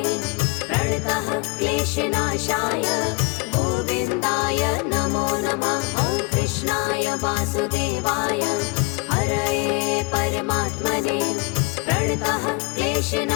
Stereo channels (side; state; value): right; quieter; 28.3 dB